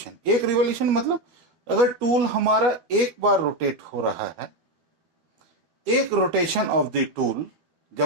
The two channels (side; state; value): left; late; 12 ms